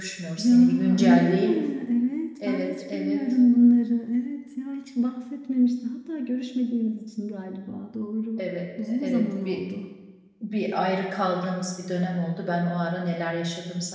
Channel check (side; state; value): both; identical; correlation 1.00